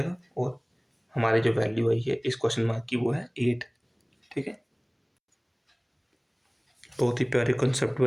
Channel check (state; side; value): identical; both; correlation 1.00